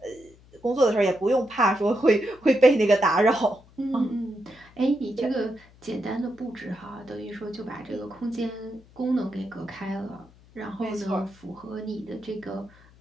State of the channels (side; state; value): left; noise; hum, 26 dB below the sound